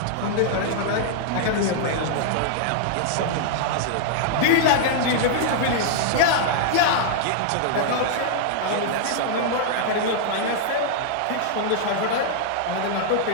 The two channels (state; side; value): different; both; correlation -0.01